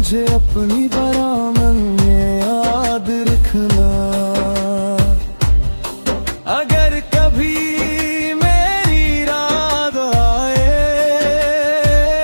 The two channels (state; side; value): inverted; both; correlation -1.00